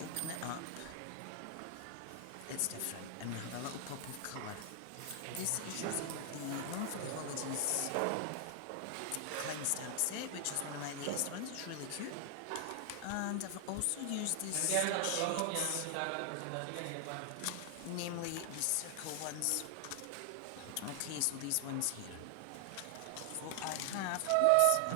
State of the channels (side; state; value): both; different; correlation 0.00